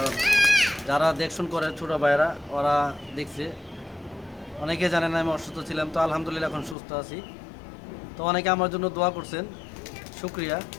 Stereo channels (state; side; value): drops out; right; at 6.8 s